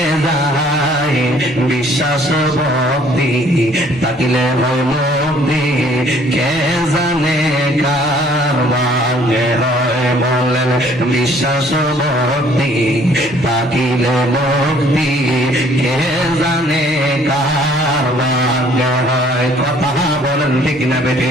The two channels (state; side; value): normal; both; correlation 0.59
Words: যায়। বিশ্বাস ভক্তি তাকিলে হয় মুক্তি, কে জানে কার ভাগ্যে হয় বলেন। বিশ্বাস ভক্তি তাকিলে মুক্তি, কে জানে কার ভাগ্যে হয়। কথা বলেন ঠিক না